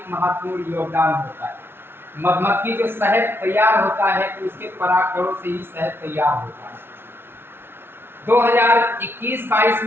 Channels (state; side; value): late; left; 0.11 ms